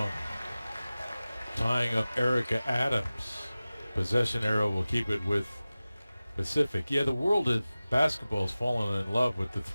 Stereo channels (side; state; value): both; inverted; correlation -0.97